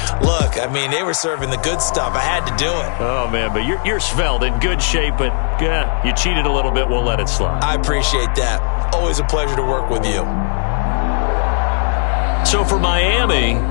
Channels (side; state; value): right; silent; digital silence